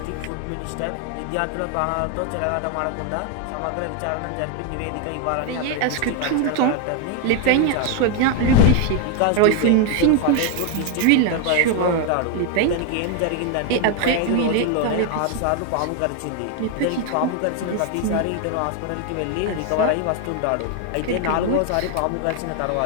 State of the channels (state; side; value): different; both; correlation 0.00